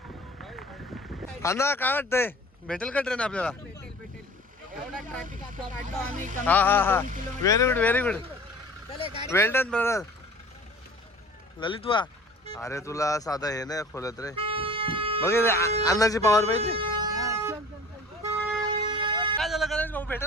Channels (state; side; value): normal; both; correlation 0.44